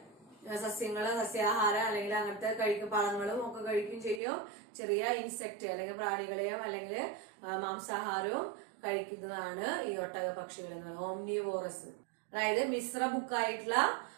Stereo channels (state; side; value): drops out; left; at 4.2 s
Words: സസ്യാഹാരം അല്ലെങ്കിൽ അങ്ങനത്തെ പഴങ്ങളും ഒക്കെ കഴിക്കും ചെയ്യും. ചെറിയ ഇൻസെക്ട് അല്ലെങ്കിൽ പ്രാണികളെയും അല്ലെങ്കിൽ മാംസാഹാരവും കഴിക്കുന്നതാണ് ഈ ഒട്ടക പക്ഷികൾ എന്ന് പറയുന്നത്. ഓംനിവോറസ്, അതായത് മിശ്ര ബുക്കായിട്ടുള്ള